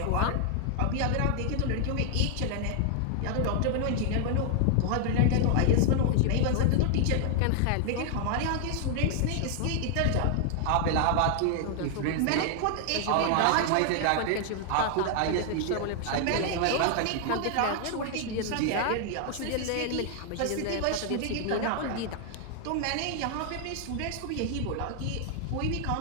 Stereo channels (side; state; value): both; different; correlation 0.00